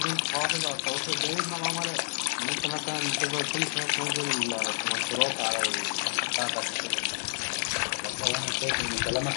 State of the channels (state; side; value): silent; right; digital silence